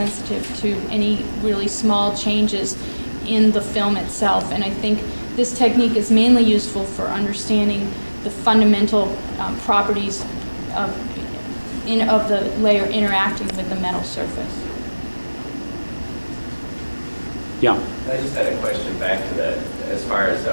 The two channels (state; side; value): inverted; both; correlation -1.00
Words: to any really small changes in the film itself. And I think this technique is mainly useful for understanding the fundamental properties of the layer interacting with the metal surface. Yeah. I just had a question back to that, as far as